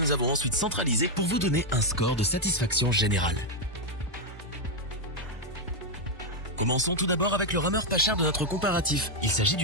avons ensuite centralisés pour vous donner un score de satisfaction générale. Commençons tout d'abord avec le rameur pas cher de notre comparatif. Il s'agit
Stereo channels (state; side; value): normal; both; correlation 0.01